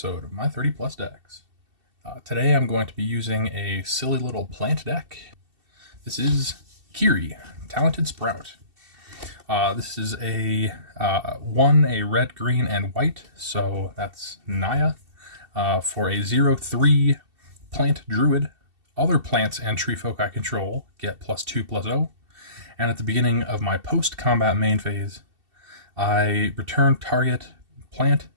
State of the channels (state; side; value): late; left; 2.7 ms